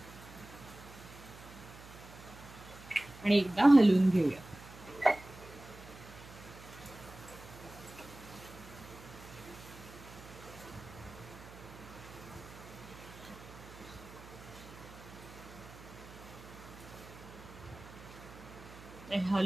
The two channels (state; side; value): noise; right; hum, 17 dB below the sound